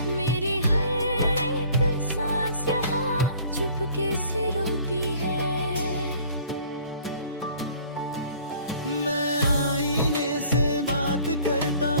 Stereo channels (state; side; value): inverted; both; correlation -0.51